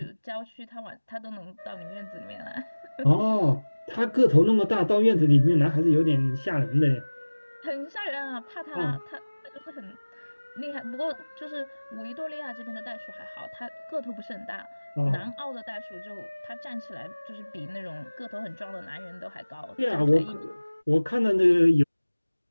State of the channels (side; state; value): both; inverted; correlation -1.00